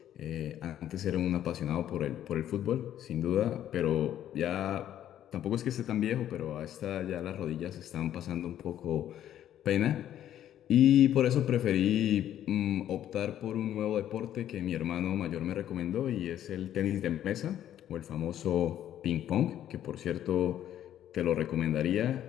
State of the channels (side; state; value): right; quieter; 11.3 dB